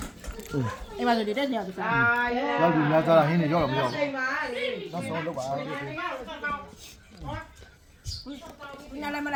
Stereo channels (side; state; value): both; identical; correlation 1.00